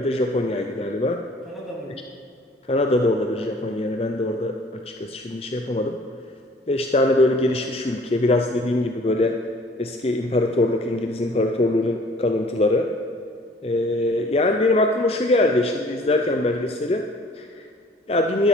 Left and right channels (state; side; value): normal; both; correlation 0.53